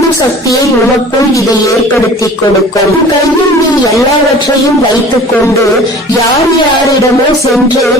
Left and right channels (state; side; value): normal; both; correlation 0.44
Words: சக்தியை உனக்குள் இதை ஏற்படுத்தி கொடுக்கும். கையில் நீ எல்லாவற்றையும் வைத்துக் கொண்டு யார் யாரிடமோ சென்று